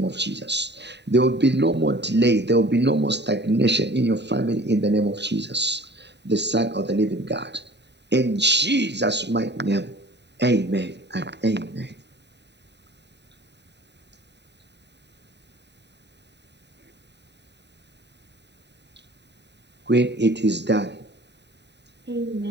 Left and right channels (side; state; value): left; late; 0.50 ms